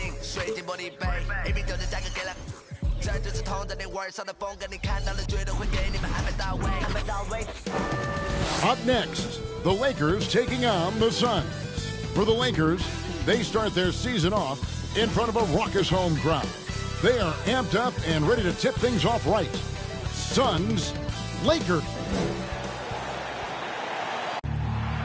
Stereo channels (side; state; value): both; identical; correlation 1.00